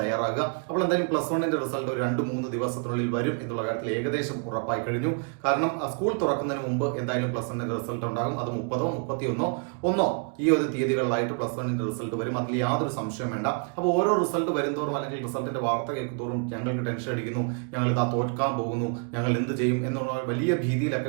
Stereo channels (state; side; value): quieter; left; 39.8 dB